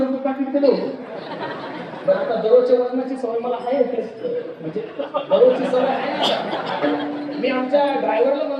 पाकिट दिलं. बरं, आता दररोजच्या वजनाची सवय मला आहे, म्हणजे दररोजची सवय आहे. मी आमच्या ड्रायव्हरला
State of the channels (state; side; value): identical; both; correlation 1.00